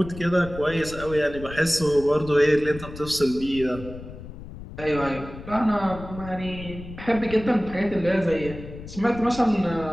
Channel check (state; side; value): noise; left; rumble, 13 dB below the sound